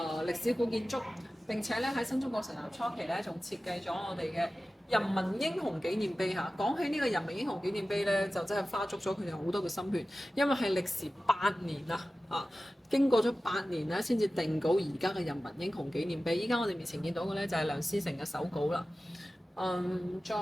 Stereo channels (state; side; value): normal; both; correlation 0.95